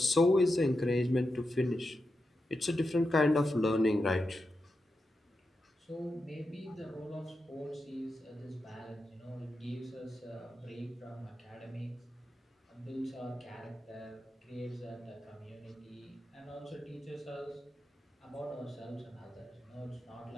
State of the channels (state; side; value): normal; both; correlation 0.88